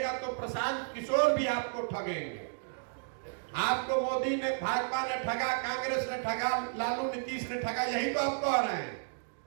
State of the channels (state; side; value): silent; left; digital silence